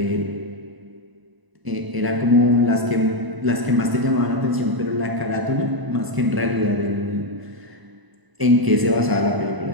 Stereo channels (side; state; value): left; late; 1.0 ms